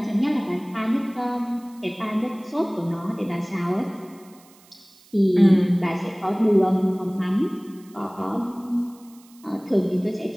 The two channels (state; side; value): noise; right; hiss, 27 dB below the sound